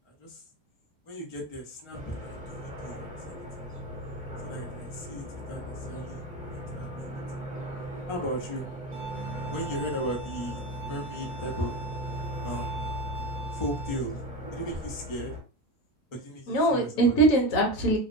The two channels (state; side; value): normal; both; correlation 0.22